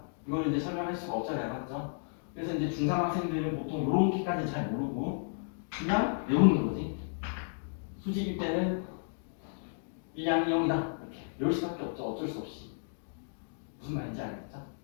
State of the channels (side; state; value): right; silent; digital silence